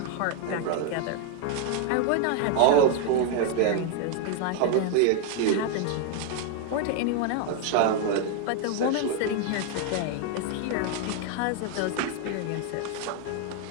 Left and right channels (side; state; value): both; different; correlation 0.00